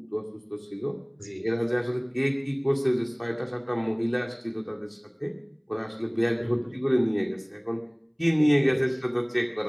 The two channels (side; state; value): both; identical; correlation 1.00